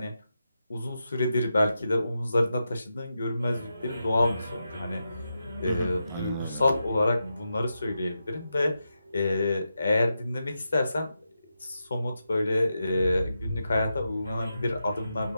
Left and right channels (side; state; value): both; inverted; correlation -0.87